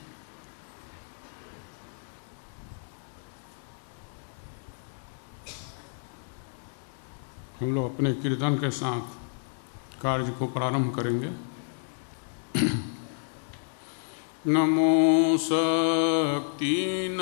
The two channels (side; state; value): right; silent; digital silence